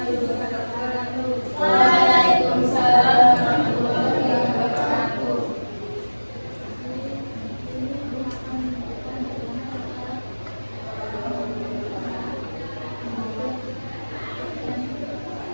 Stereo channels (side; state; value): both; inverted; correlation -1.00